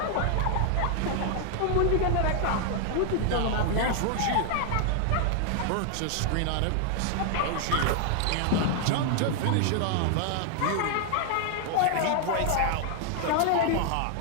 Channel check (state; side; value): different; both; correlation 0.00